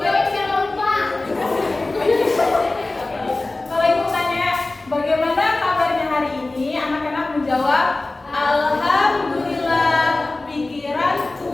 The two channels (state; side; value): quieter; right; 3.0 dB